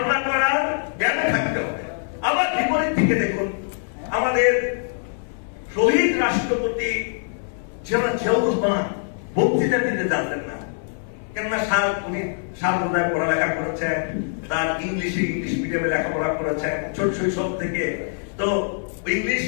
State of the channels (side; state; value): right; silent; 55 dB below the other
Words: করার জ্ঞান থাকতে হবে। আবার বিপরীত দিকে দেখুন, আমাদের শহীদ রাষ্ট্রপতি জিয়াউর রহমান বক্তৃতা দিতে জানতেন না, কেননা উনি সার্বদায় পড়ালেখা করেছেন, তার ইংলিশ মিডিয়ামে লেখাপড়া করেছেন ছোট শৈশব থেকে, তো ইংলিশ